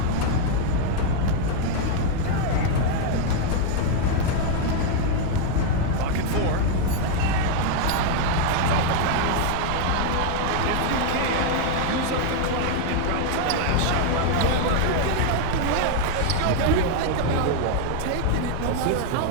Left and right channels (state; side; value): different; both; correlation 0.00